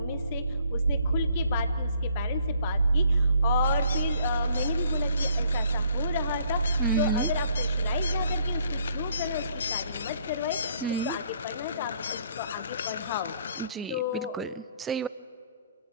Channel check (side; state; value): both; inverted; correlation -0.63